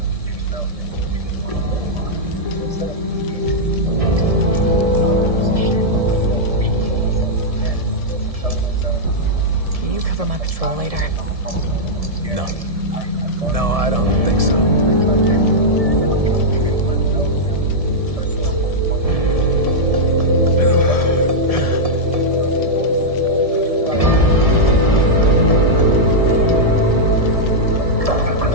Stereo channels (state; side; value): late; left; 1.7 ms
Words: Can you cover my patrol later? No. No, I don't think so.